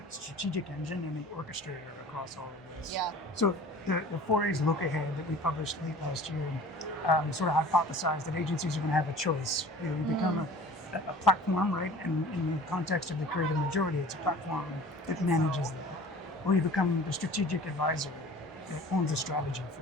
engine and the orchestrator across all of this. Yeah. So the 4A's look ahead that we published late last year sort of hypothesized that agencies are going to have a choice. You become a platform, right? And in the context of the creative majority, it's a platform that manages that. Or you become the strategic advisor that owns the strategy for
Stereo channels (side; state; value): both; normal; correlation 0.45